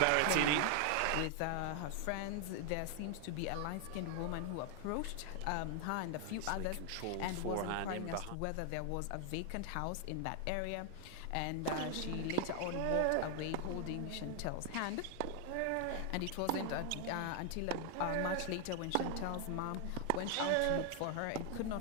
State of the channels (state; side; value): different; both; correlation 0.00